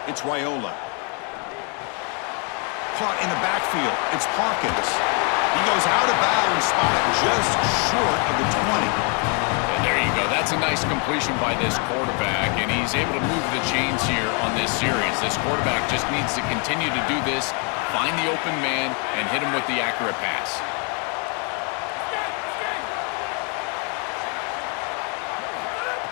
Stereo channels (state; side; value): quieter; right; 36.7 dB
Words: it's Raiola. Caught in the backfield, it's Hawkins. He goes out of bounds, spotted just short of the 20. And there you go. That's a nice completion by this quarterback, and he's able to move the chains here on this series. This quarterback just needs to continue to do this, find the open man, and hit him with the accurate pass.